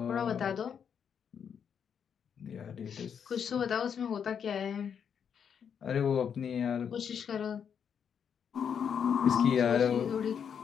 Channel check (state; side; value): quieter; right; 7.6 dB